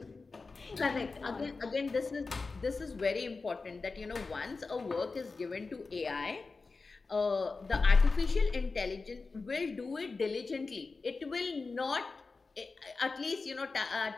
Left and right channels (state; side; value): quieter; right; 4.1 dB